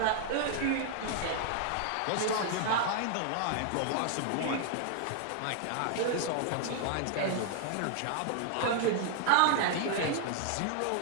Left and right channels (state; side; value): different; both; correlation 0.00